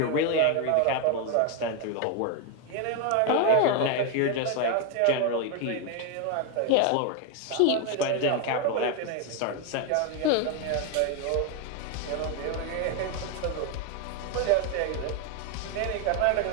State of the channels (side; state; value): both; different; correlation 0.01